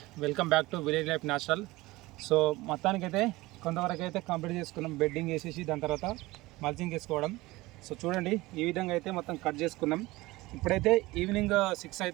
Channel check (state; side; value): quieter; left; 20.1 dB